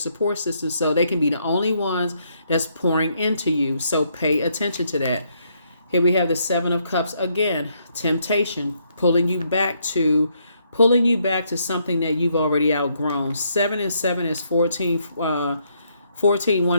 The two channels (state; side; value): inverted; both; correlation -0.74